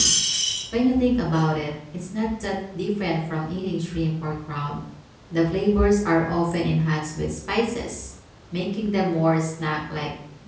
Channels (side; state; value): both; identical; correlation 1.00